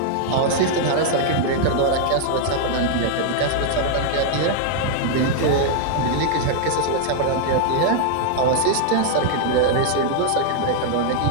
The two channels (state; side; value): different; both; correlation -0.01